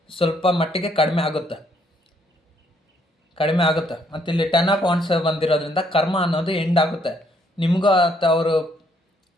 ಸ್ವಲ್ಪ ಮಟ್ಟಿಗೆ ಕಡಿಮೆ ಆಗುತ್ತೆ. ಮತ್ತು ಇಲ್ಲಿ 10 ಆಫ್ ವಾಂಡ್ಸ್ ಬಂದಿರೋದ್ರಿಂದ ಕರ್ಮ ಅನ್ನೋದು ಎಂಡ್ ಆಗುತ್ತೆ. ನಿಮಗೂ ಅಥವಾ ಅವರು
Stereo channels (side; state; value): both; normal; correlation 0.69